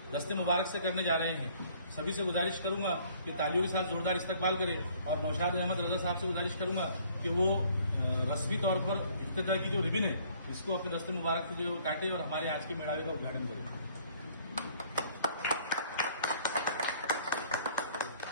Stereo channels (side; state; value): both; inverted; correlation -0.59